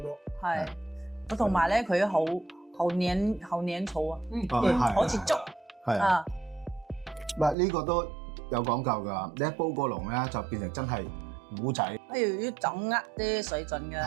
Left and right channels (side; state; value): left; drops out; at 7.6 s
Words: 係。同埋咧，佢好黏稠啊，好似粥。係啊。唔係呢個都有講究㗎，你一煲過籠咧就變成真係糊仔。要掌握啲水準嘅。